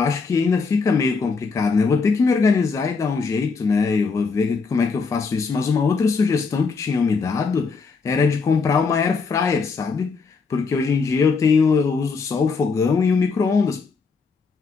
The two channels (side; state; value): right; quieter; 4.8 dB